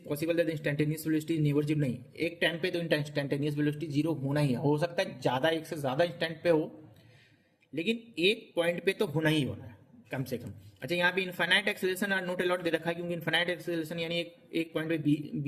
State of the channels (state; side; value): identical; both; correlation 1.00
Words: possible that instantaneous velocity is never zero. नहीं, एक टाइम पे तो इंस्टेंटेनियस वेलोसिटी जीरो होना ही है. हो सकता है ज़्यादा, एक से ज़्यादा इंस्टेंट पे हो, लेकिन एक पॉइंट पे तो होना ही होना है कम से कम. अच्छा, यहाँ पे इनफाइनाइट एक्सेलरेशन और नॉट अलाउड दे रखा है, क्योंकि इनफाइनाइट एक्सेलरेशन यानी एक पॉइंट पे